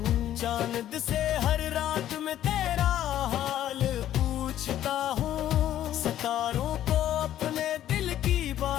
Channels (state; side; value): quieter; right; 12.0 dB